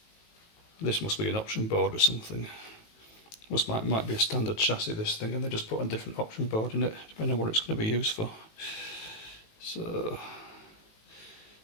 This must be an option board or something. This might be a standard chassis, this thing, and they just put a different option board in it, depending on what it's going to be used for. So,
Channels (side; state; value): right; late; 19 ms